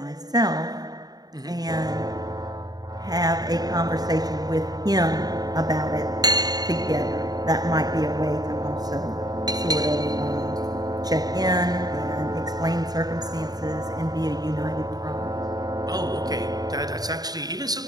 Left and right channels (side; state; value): left; late; 0.19 ms